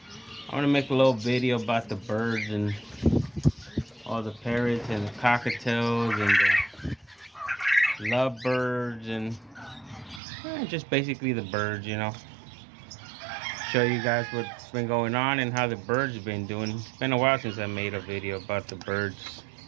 I want to make a little video about the birds and all the parrots and the cockatiels and the lovebirds and just basically the birds, you know. Show you guys what's been going on and how the birds have been doing. It's been a while since I made a video about the birds.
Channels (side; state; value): left; drops out; at 10.2 s